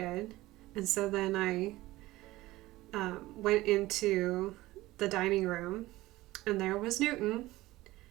And so then I went into the dining room, and there was Newton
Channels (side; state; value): left; quieter; 18.0 dB